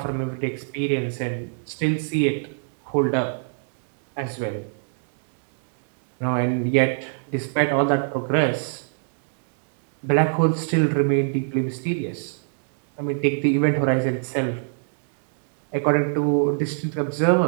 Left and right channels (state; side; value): silent; left; digital silence